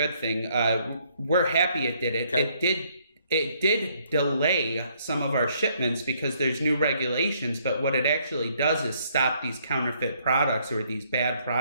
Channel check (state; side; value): inverted; both; correlation -0.68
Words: thing. We're happy it did it. Okay. It did delay some of our shipments because there's new regulations, but what it actually does is stop these counterfeit products or these bad